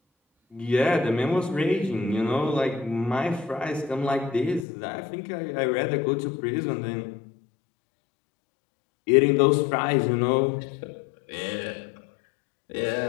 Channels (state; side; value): drops out; right; at 4.7 s